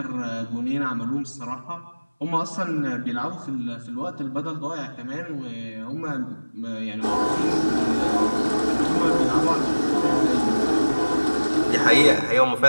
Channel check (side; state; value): both; inverted; correlation -1.00